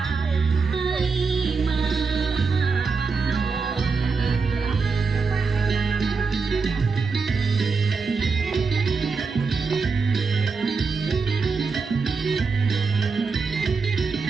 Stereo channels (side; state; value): left; quieter; 4.8 dB